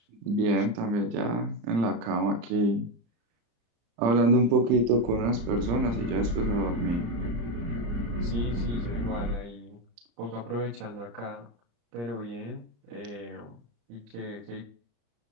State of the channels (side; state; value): left; late; 35 ms